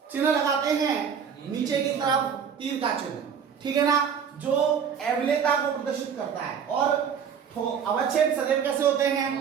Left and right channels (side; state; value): left; quieter; 7.3 dB